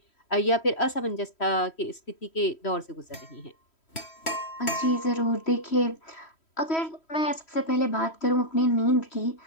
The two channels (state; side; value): late; right; 3.1 ms